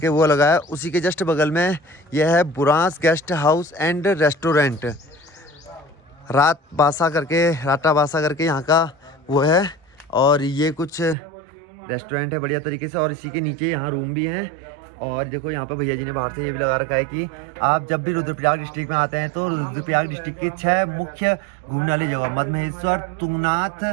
वो लगा है। उसी के जस्ट बगल में यह है Burans guest house and restaurant, Rata Basa करके यहाँ का वो है। और ये कुछ रेस्टोरेंट है बढ़िया तरीके से, और इसी के नीचे यहाँ रूम भी हैं। और देखो यहाँ पर भैया जी ने बाहर से ये भी लगा रखा है कि आप जब भी रुद्रप्रयाग डिस्ट्रिक्ट में आते हैं तो रुद्रप्रयाग डिस्ट्रिक्ट की 6 मुख्य घूमने वाली जगह, मदमहेश्वर, तुंगनाथ,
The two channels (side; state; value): left; drops out; at 11.2 s